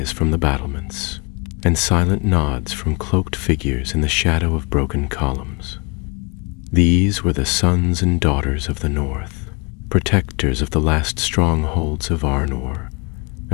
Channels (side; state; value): right; quieter; 30.4 dB